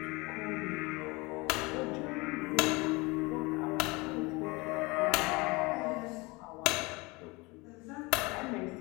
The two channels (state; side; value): quieter; right; 25.0 dB